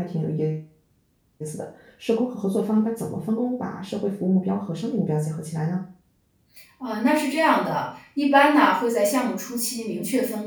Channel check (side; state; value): both; identical; correlation 1.00